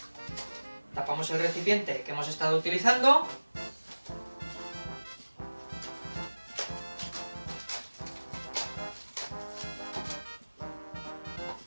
tapamos el recipiente que hemos estado utilizando,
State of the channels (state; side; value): inverted; both; correlation -1.00